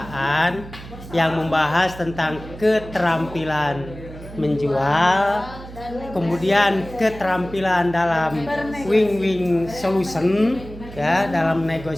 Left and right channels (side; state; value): right; noise; hum, 15 dB below the sound